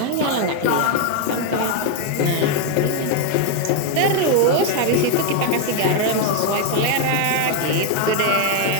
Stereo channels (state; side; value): different; both; correlation 0.01